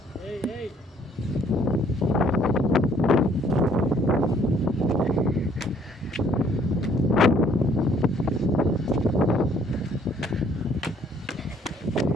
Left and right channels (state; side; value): normal; both; correlation 0.62